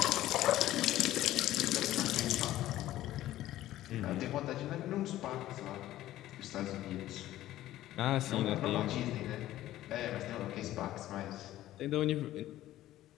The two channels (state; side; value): quieter; right; 14.4 dB